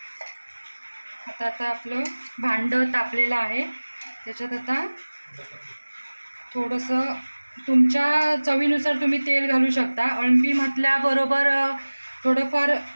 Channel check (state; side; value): inverted; both; correlation -1.00